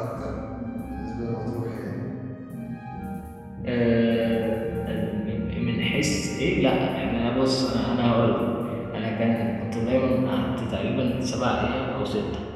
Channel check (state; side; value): identical; both; correlation 1.00